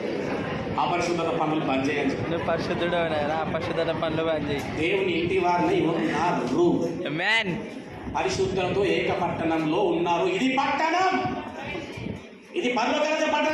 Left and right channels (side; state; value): both; identical; correlation 1.00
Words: అపరిశుద్ధత పనులు బంద్ చేయని చెప్పి, నువ్వు పరిశుద్ధుడు అపరిశుద్ధత పనులు బంద్ చేయి. దేవుని ఇంటి వారిని ఉన్నారు. పరిశుద్ధులతో ఏక పట్టణంలో ఉన్నారు. ఇది పట్టణం, ఇది పరలోక రాజ్య